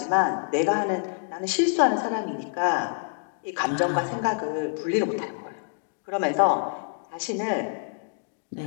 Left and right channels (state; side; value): silent; right; digital silence